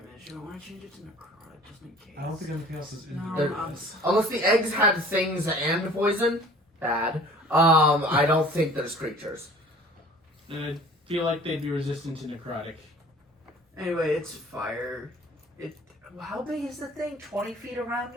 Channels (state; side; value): normal; both; correlation 0.48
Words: I want to change it to necrotic just in case. I don't think anything else is in No, there. Unless the eggs had things and poison, bad. I don't think there's creatures. I feel like they'd be resistant to necrotic. Anyway, it's fire. How big is the thing? 20 feet around